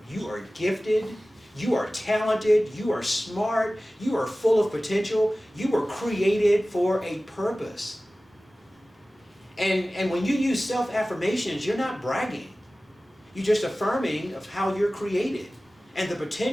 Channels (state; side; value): normal; both; correlation 0.97